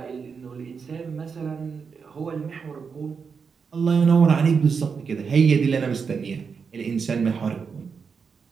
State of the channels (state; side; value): quieter; left; 5.8 dB